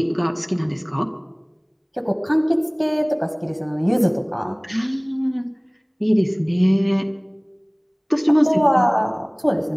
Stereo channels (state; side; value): identical; both; correlation 1.00